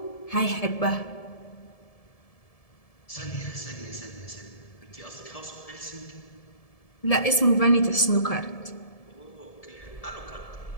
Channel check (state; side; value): late; right; 1.7 ms